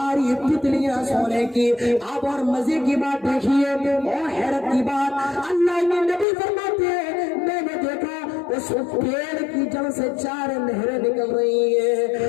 تتلیاں سونے کی۔ اب اور مزے کی بات دیکھیے اور حیرت کی بات، اللہ کے نبی فرماتے ہیں میں نے دیکھا اس پیڑ کی جڑ سے 4 نہریں نکل رہی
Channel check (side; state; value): right; drops out; at 6.2 s